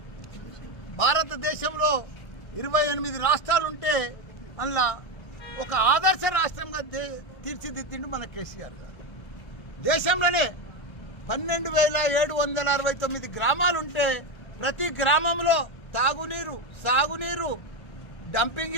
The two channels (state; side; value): late; right; 1.4 ms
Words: భారతదేశంలో 28 రాష్ట్రాలుంటే అందులో ఒక ఆదర్శ రాష్ట్రంగా తీర్చిదిద్దిండు మన కేసీఆర్ గారు. దేశంలోనే 12,769 గ్రామాలుంటే ప్రతి గ్రామంలో తాగునీరు, సాగునీరు, డంపింగ్